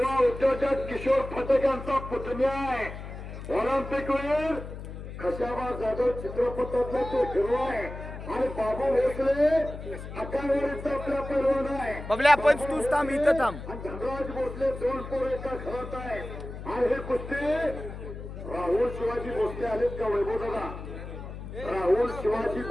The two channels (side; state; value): left; noise; hum, 10 dB below the sound